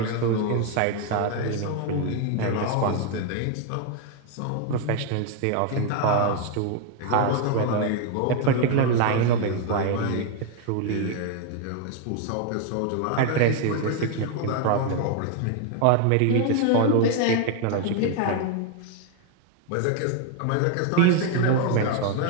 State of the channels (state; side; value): different; both; correlation 0.01